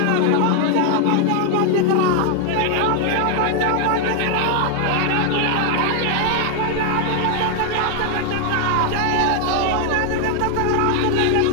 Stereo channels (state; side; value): different; both; correlation 0.00